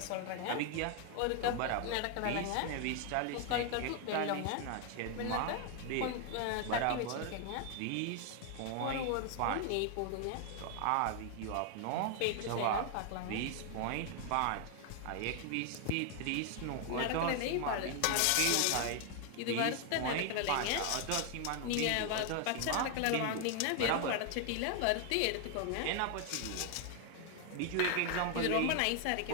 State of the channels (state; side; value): different; both; correlation 0.00